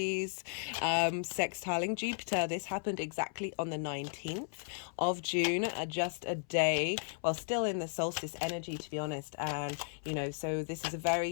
sextiling Jupiter. This happened exactly on the 19th of June, just a day, well, still in the solstice energy, to be honest. And, so this is a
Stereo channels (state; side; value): silent; right; 54 dB below the other